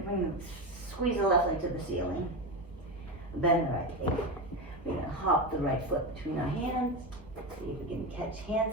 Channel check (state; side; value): normal; both; correlation 0.17